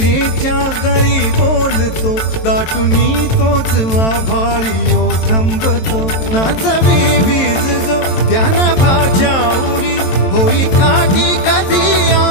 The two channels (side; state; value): right; late; 22 ms